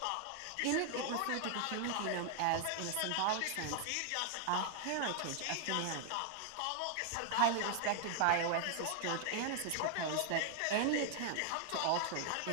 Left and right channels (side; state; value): both; different; correlation 0.00